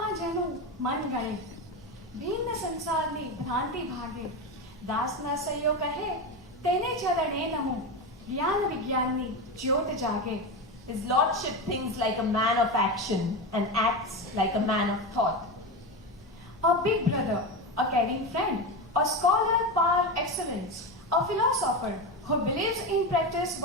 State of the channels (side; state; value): both; normal; correlation 0.18